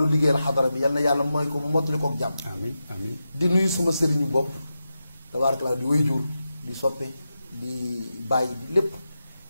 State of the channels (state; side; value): inverted; both; correlation -0.90